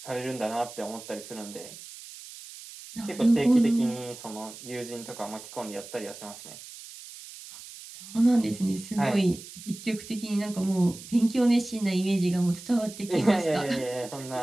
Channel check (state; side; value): noise; right; hiss, 15 dB below the sound